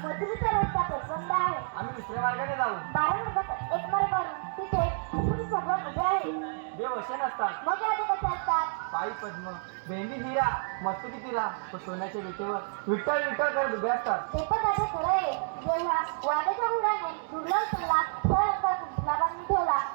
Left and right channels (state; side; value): silent; left; digital silence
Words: रस्ता प्रचंड आहे. आम्ही दुसऱ्या मार्गाने जाऊ. 12 मार्गात एक मार्ग करून तिथे कुठून सगळं उभे आहे. देव असे नसतात. मग यादी कसे असतात? पायी पद्म, भेंडी हिरा, मस्तकी तिरा, तो सोन्याच्या विटेवर विठ्ठल विठ्ठल करत उभे असतात. ते पण आता खरं आहे. जेव्हा वाड्याच्या मुलाने दुर्लभ सल्ला फळ बांधून ठेवला